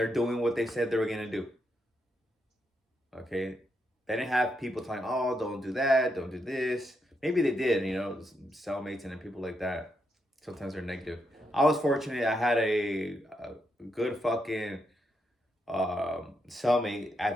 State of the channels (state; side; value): normal; both; correlation 0.81